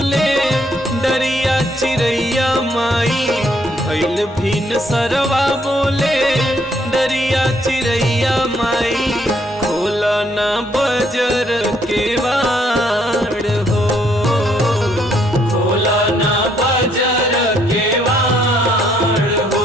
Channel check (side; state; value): both; normal; correlation 0.69